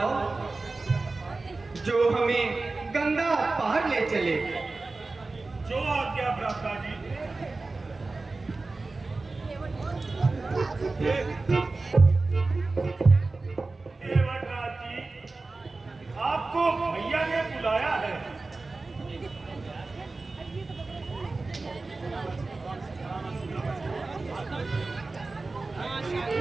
जो हमें गंगा पार ले चले। जो आज्ञा भ्राता जी। केवटराज जी, आपको भैया ने बुलाया है।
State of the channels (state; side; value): quieter; left; 3.5 dB